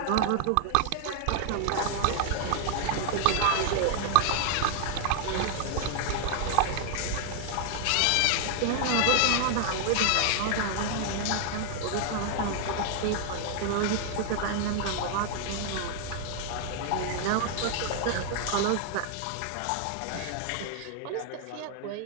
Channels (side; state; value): both; different; correlation 0.00